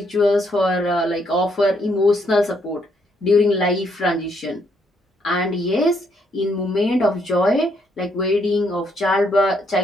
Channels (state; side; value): normal; both; correlation 0.73